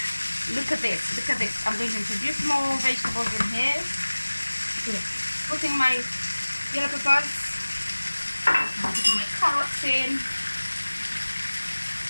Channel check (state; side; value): inverted; both; correlation -1.00